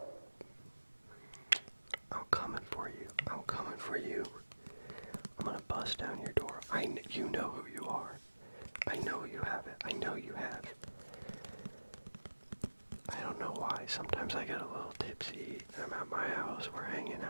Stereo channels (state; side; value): inverted; both; correlation -1.00